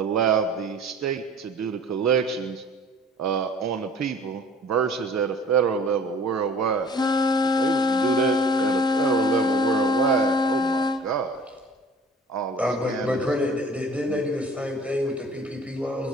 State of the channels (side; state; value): both; normal; correlation 0.48